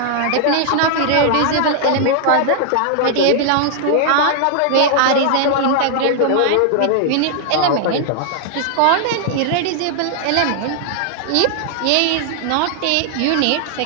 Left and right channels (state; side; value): different; both; correlation 0.00